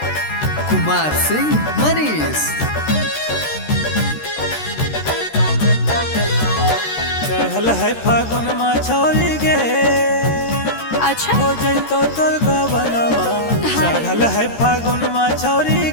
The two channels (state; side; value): late; right; 13 ms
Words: Kumar Singh Manish. चहल है फागुन मा छोरी गे, अच्छा हो जैतो तोर गवनमा। चहल है फागुन मा छोरी